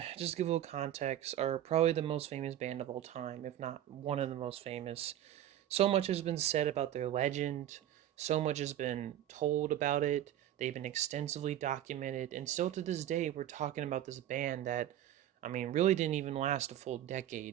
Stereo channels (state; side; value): quieter; left; 12.0 dB